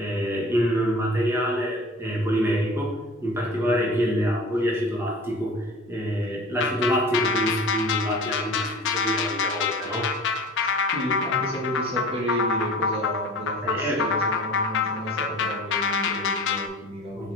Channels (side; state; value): both; normal; correlation 0.40